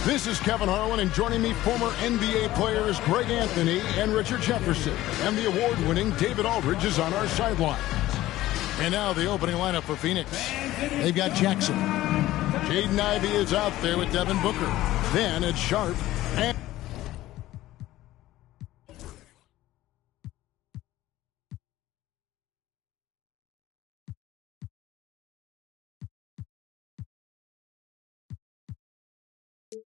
This is Kevin Harlan, and joining me, former NBA players Greg Anthony and Richard Jefferson. And the award-winning David Aldridge is on our sideline. And now the opening lineup for Phoenix. They've got Jackson. Jaden Ivey is out there with Devin Booker. Then it's Sharp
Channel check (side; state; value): right; quieter; 15.6 dB